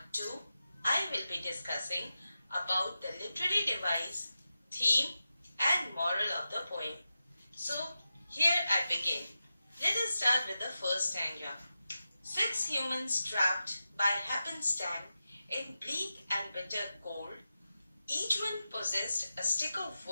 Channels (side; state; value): both; inverted; correlation -0.91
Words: 2, I will be discussing about the literary device, theme and moral of the poem. So here I begin. Let us start with the first stanza. 6 humans trapped by happenstance in bleak and bitter cold. Each one possessed a stick of